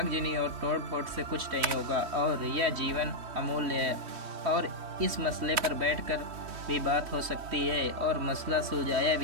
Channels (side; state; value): left; late; 3.1 ms